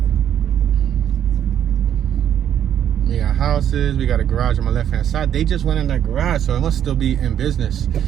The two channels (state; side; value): quieter; left; 9.9 dB